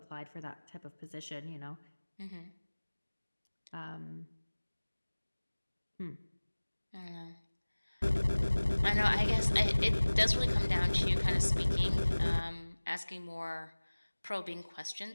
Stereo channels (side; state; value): both; inverted; correlation -1.00